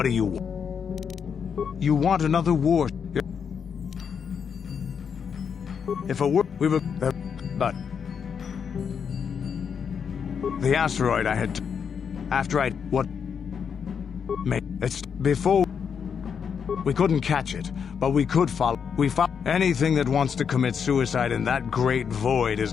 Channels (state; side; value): quieter; right; 6.9 dB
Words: do you want? You want another war? If a war... we were... but... the asteroid I had... after I... what... made... it's... before... we couldn't catch it, but we could follow... we found... anything that wants to commit suicide in that great void